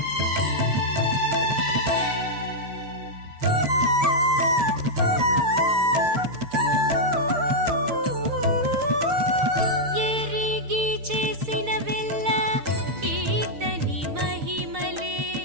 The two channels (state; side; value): late; left; 6.5 ms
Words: ఎరిగి చేసిన వెల్ల ఈతని మహిమలే,